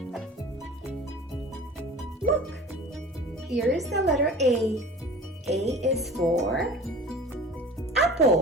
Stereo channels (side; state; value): both; normal; correlation 0.41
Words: Look, here is the letter A. A is for